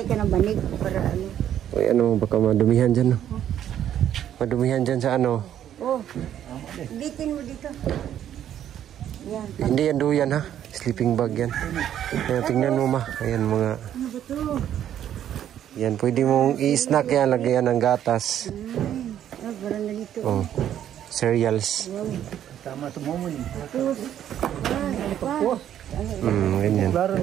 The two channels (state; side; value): quieter; left; 10.6 dB